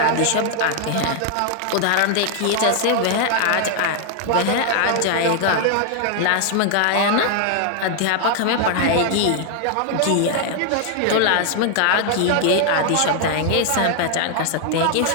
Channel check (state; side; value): different; both; correlation 0.00